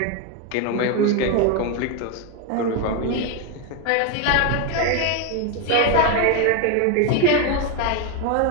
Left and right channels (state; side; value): different; both; correlation 0.01